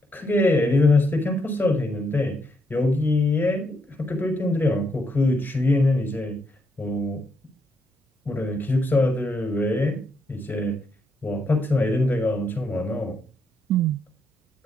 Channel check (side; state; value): both; normal; correlation 0.77